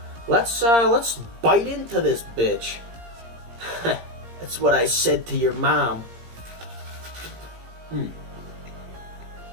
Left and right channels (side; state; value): left; late; 17 ms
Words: Let's bite into this bitch. That's what I said to your mom.